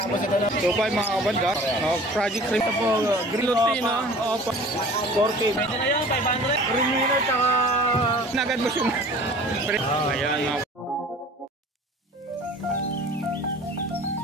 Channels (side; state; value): both; normal; correlation 0.45